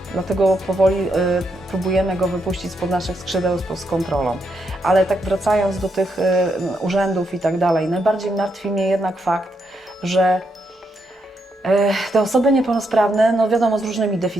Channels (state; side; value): normal; both; correlation 0.80